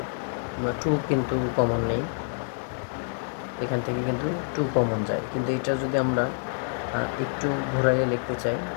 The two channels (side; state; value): right; silent; digital silence